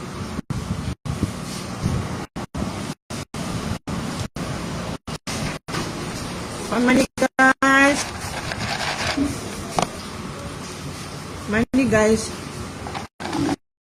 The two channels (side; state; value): both; identical; correlation 1.00